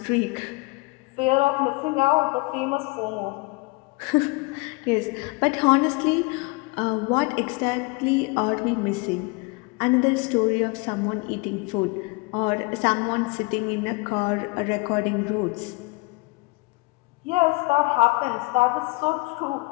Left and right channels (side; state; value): right; quieter; 26.6 dB